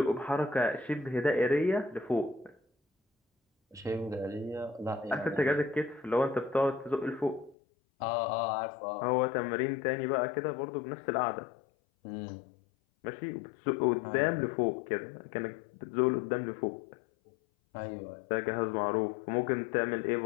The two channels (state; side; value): drops out; right; at 7.6 s